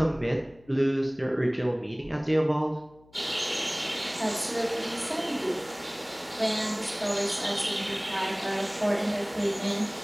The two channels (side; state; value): left; noise; hum, 27 dB below the sound